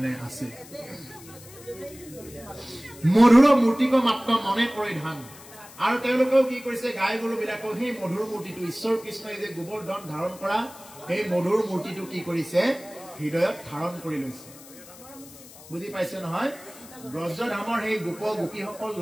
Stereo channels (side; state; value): left; noise; hiss, 19 dB below the sound